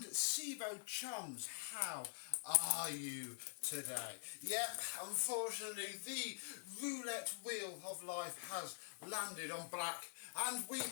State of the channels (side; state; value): right; silent; digital silence